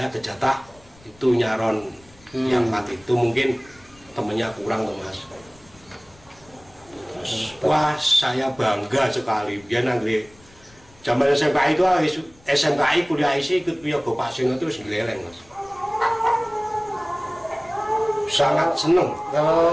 kejatah itu nyaron yang 4 itu mungkin temennya kurang tuh mas. Terus wah saya bangga sekali biar nanti zaman SMKI itu SMKI kuliah isi ikut Wiyogo Pak Seno terus geleleng mas. Sangat seneng.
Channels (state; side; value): noise; left; rumble, 27 dB below the sound